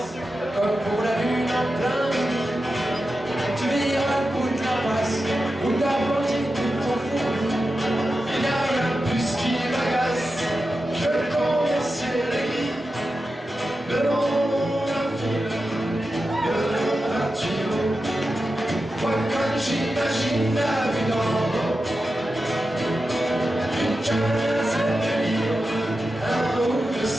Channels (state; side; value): normal; both; correlation 0.91